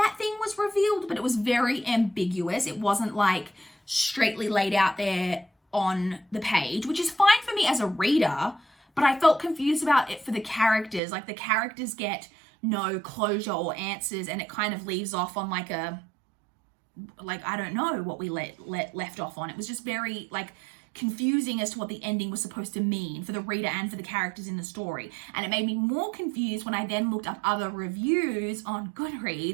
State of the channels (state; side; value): drops out; left; at 11.0 s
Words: thing was revealed, but it was very ambiguous. It wasn't like straightly laid out there on the page, which is fine for me as a reader, but I felt confused about it for the characters. Like the characters get no closure or answers, and it kind of leaves off on like I don't know what we left off on. It was just very like confusing as to what the ending was supposed to mean for the reader and for the characters in the story. And it made me more confused when I then looked up other reviews on